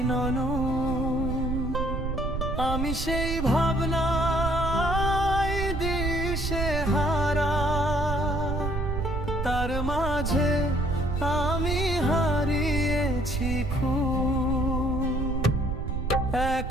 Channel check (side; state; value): right; noise; rumble, 3 dB below the sound